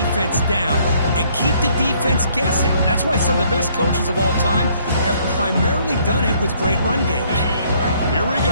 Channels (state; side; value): inverted; both; correlation -0.64